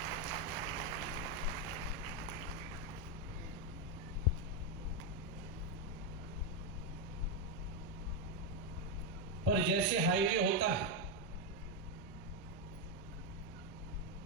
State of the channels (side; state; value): both; normal; correlation 0.04